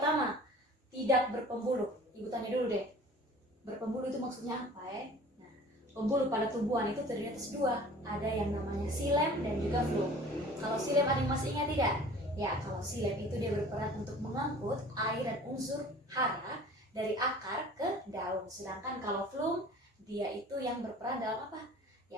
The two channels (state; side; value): normal; both; correlation 0.46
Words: tidak berpembuluh. Ibu tanya dulu deh, berpembuluh itu maksudnya apa ya? Nah, pembuluh pada tumbuhan itu terdiri atas 2. Ada yang namanya xilem dan juga phloem. Kalau xilem ada yang masih ingat tidak? Ya, kalau xilem itu dia berperan untuk mengangkut air dan unsur hara dari akar ke daun. Sedangkan kalau phloem, dia itu yang berperan dalam apa?